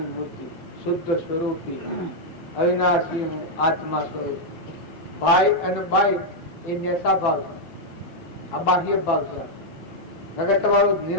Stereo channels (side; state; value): right; late; 12 ms